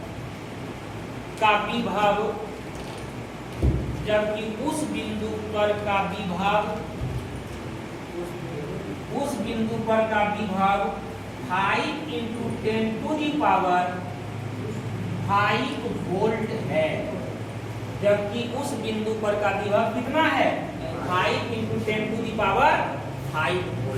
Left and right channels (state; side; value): identical; both; correlation 1.00